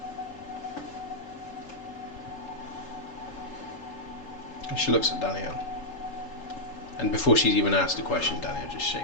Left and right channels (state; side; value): late; right; 3.7 ms